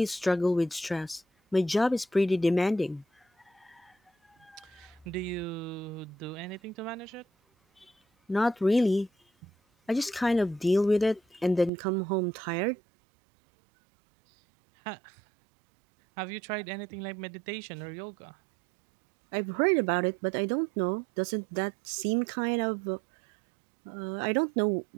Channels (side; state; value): left; drops out; at 11.7 s